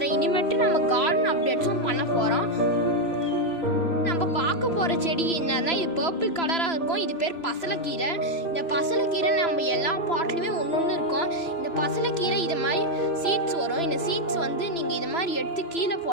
இனிமேட்டு நம்ம கார்டன் அப்டேட்ஸும் பண்ண போகிறோம். நம்ம பார்க்க போகிற செடி என்னன்னா இது பர்பிள் கலராக இருக்கும். இது பேர் பசலைக்கீரை. இந்த பசலைக்கீரை நம்ம எல்லா பாட்லையுமே ஒன்று இருக்கும். இந்த பசலைக்கீரை இது மாதிரி சீட்ஸ் வரும். இந்த சீட்ஸ் நீங்கள் இது மாதிரி எடுத்து கீழே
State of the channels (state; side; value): late; right; 3.0 ms